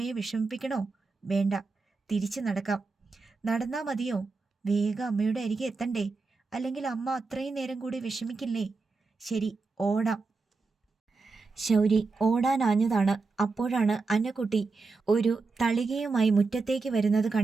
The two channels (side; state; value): left; quieter; 4.1 dB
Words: വിഷമിപ്പിക്കണോ? വേണ്ട, തിരിച്ചു നടക്കാം. നടന്നാ മതിയോ? വേഗം അമ്മയുടെ അരികെ എത്തണ്ടേ? അല്ലെങ്കിൽ അമ്മ അത്രയും നേരം കൂടി വിഷമിക്കില്ലേ? ശരി, ഓടാം. ശൗരി ഓടാനാഞ്ഞതാണ്. അപ്പോഴാണ് അന്നക്കുട്ടി ഒരു തളികയുമായി മുറ്റത്തേക്ക് വരുന്നത്